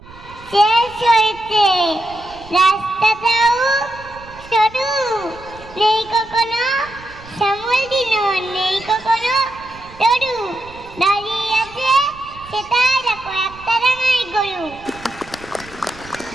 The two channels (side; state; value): right; noise; rumble, 20 dB below the sound